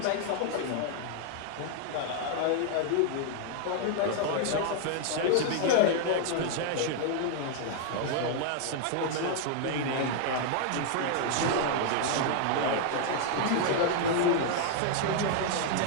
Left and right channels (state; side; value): different; both; correlation 0.00